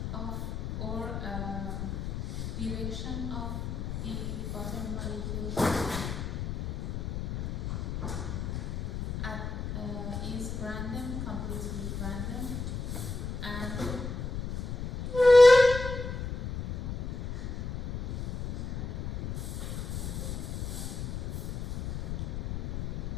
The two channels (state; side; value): noise; left; rumble, 4 dB below the sound